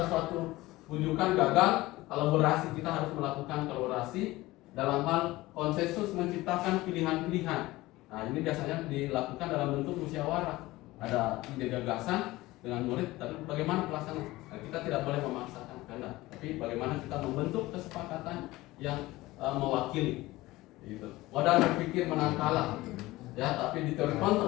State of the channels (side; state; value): right; quieter; 18.9 dB